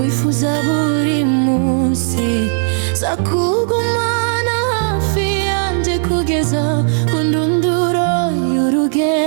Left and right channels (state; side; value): silent; left; digital silence